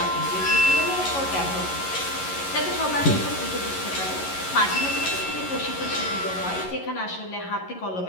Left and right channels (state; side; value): late; right; 11 ms